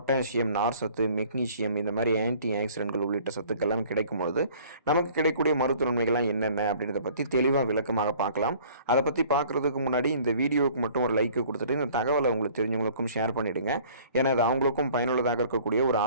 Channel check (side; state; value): both; inverted; correlation -0.52